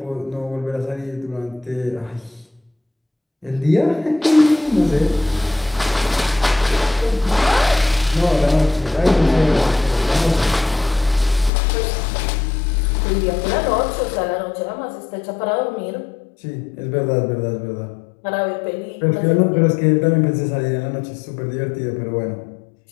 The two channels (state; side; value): drops out; right; at 11.5 s